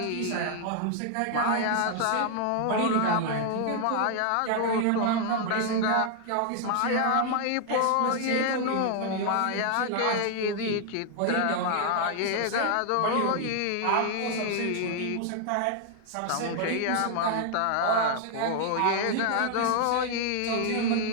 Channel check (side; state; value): both; different; correlation 0.00